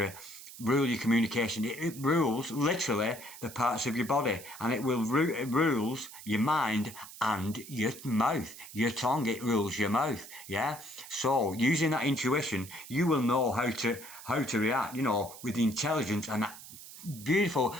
rule your communication, it rules literally the parts of your body, and it rules your mind and your mouth, your tongue. It rules your mouth. Yeah. So using that intuition, you will know how to react. You know, with the intelligence and that beautiful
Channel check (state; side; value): noise; right; hiss, 15 dB below the sound